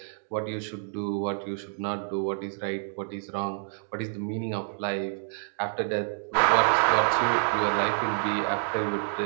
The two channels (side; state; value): left; silent; digital silence